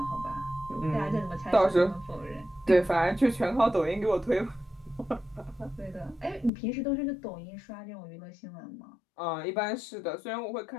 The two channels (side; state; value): right; drops out; at 6.5 s